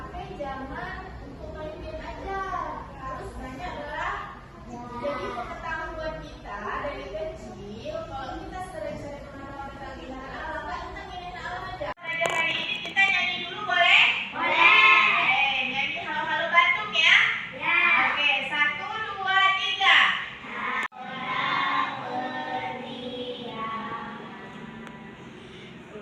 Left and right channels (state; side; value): identical; both; correlation 1.00